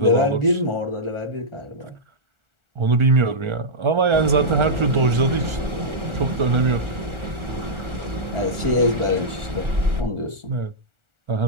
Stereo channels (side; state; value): left; late; 1.4 ms